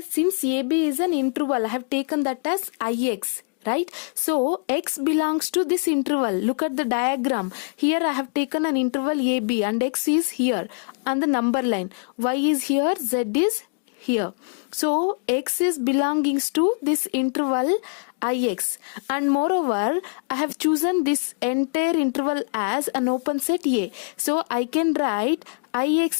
since AB is an interval, I have taken that as Ix. Right? So x belongs to this interval. Look at the diagram. Here I have taken an interval AB and x is here on the number line. Y is here, Z is here. So x is belongings to this interval Ix, and moreover I have chosen this entire interval as an open set A. So I can write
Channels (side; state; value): right; quieter; 38.6 dB